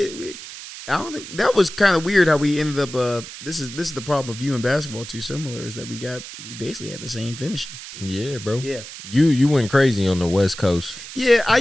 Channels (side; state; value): right; noise; hiss, 13 dB below the sound